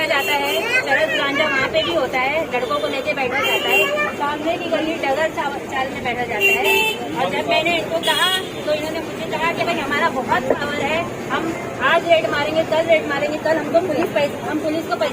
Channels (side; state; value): both; identical; correlation 1.00